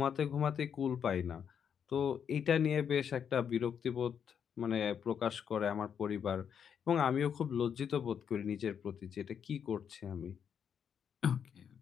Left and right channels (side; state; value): right; quieter; 7.8 dB